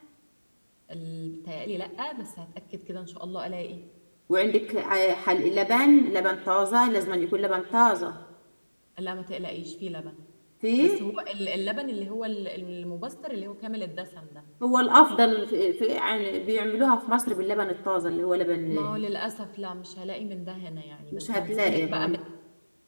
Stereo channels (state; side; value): inverted; both; correlation -1.00